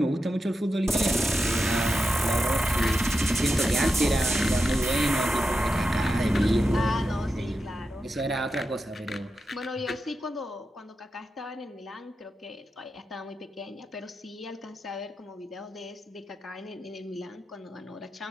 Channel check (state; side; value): normal; both; correlation 0.89